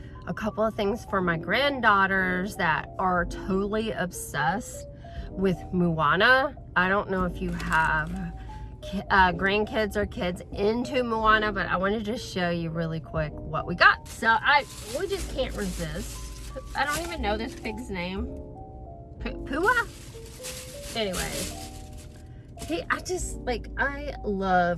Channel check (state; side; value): identical; both; correlation 1.00